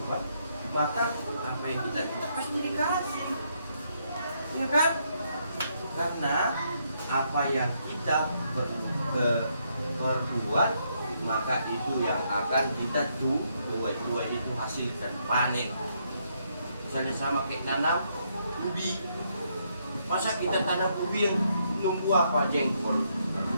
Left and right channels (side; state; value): both; inverted; correlation -0.75